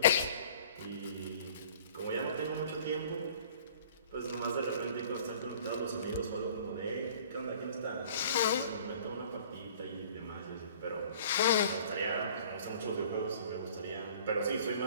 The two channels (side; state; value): both; inverted; correlation -0.50